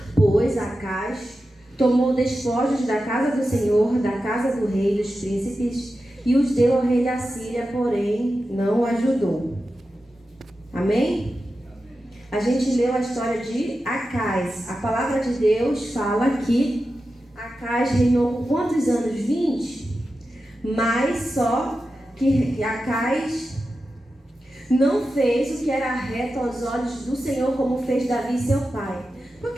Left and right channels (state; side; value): normal; both; correlation 0.92